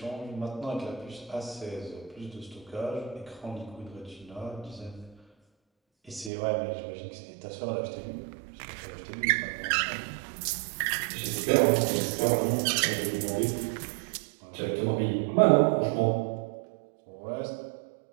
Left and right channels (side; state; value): left; drops out; at 6.3 s